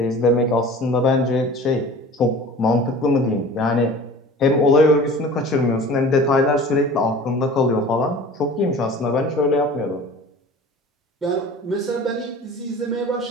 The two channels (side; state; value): both; normal; correlation 0.41